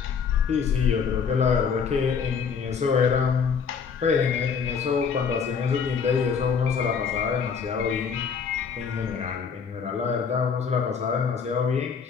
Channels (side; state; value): right; quieter; 6.2 dB